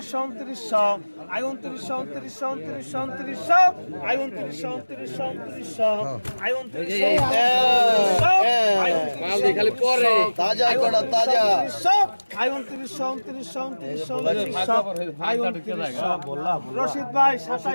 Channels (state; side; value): inverted; both; correlation -1.00